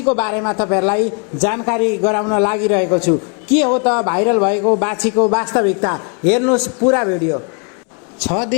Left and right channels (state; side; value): quieter; right; 38.0 dB